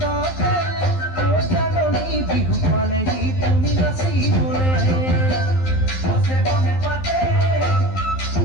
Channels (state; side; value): late; right; 11 ms